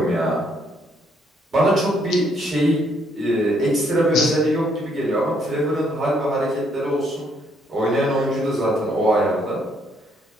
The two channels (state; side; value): normal; both; correlation 0.70